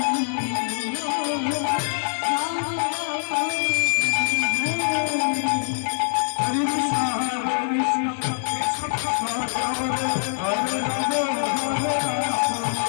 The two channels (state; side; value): silent; right; digital silence